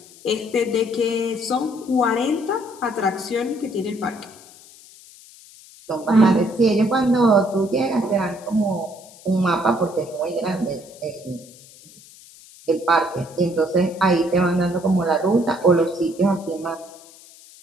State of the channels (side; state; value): left; noise; hiss, 22 dB below the sound